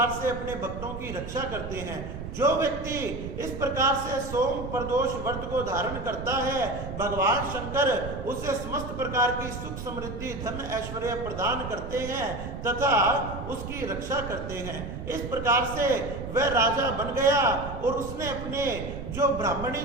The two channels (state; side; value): noise; right; rumble, 8 dB below the sound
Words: से अपने भक्तों की रक्षा करते हैं। जो व्यक्ति इस प्रकार से सोम प्रदोष व्रत को धारण करता है, भगवान शंकर उसे समस्त प्रकार की सुख समृद्धि धन ऐश्वर्य प्रदान करते हैं तथा उसकी रक्षा करते हैं। इस प्रकार से वह राजा बन गया और उसने अपने जो ब्राह्मणी